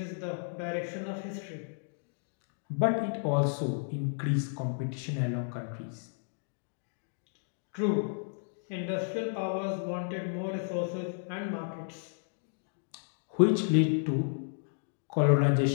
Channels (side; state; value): right; silent; digital silence